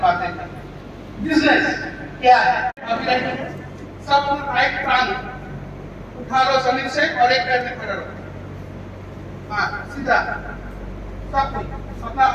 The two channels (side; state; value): both; identical; correlation 1.00